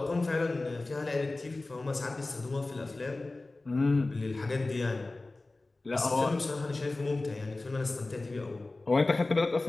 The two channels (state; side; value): quieter; right; 3.1 dB